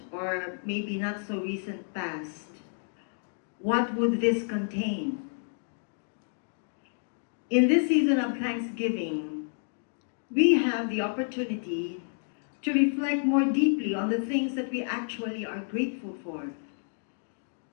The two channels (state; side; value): silent; right; digital silence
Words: or maybe not so recent past, what would this contain? In this season of Thanksgiving, we have the opportunity to reflect more deeply on the things that we actually are grateful for.